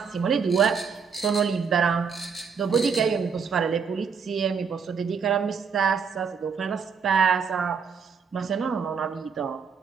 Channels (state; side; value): quieter; left; 6.0 dB